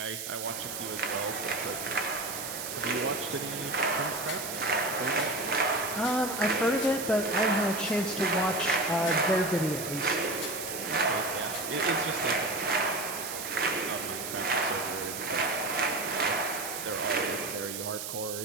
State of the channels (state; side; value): noise; right; hiss, 6 dB below the sound